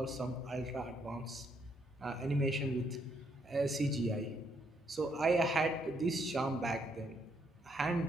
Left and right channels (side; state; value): both; normal; correlation 0.73